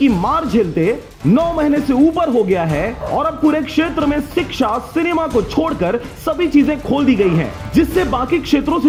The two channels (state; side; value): identical; both; correlation 1.00